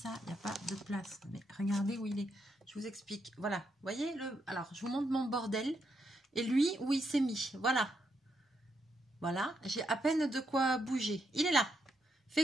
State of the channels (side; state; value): both; normal; correlation 0.80